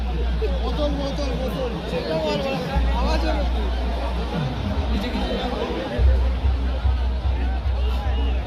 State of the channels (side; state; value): both; identical; correlation 1.00